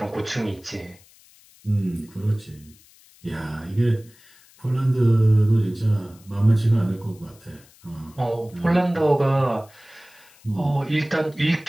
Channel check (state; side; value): noise; left; hiss, 27 dB below the sound